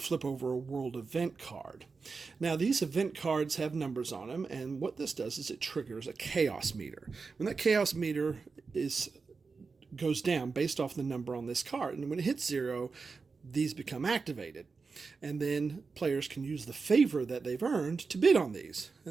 flip over a world event card. Now these event cards have numbers on them, and what this does is it triggers a chaos meter. When that chaos meter goes down based off the number on this card, and when it hits 0, these become activated. And then players can use the favor that they've earned to bid on these.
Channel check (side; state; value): left; quieter; 4.6 dB